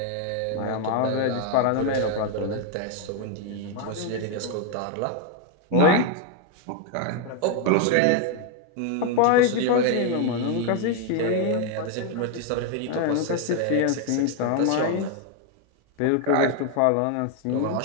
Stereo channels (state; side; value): different; both; correlation 0.01